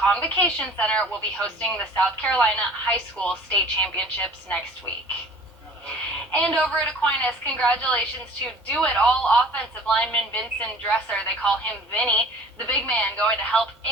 Convocation Center will be hosting the South Carolina High School State Championships next week. And over at Aquinas, congratulations to do-it-all offensive lineman Vincent Dresser. They call him Vinny, the big man going to help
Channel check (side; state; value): both; normal; correlation 0.47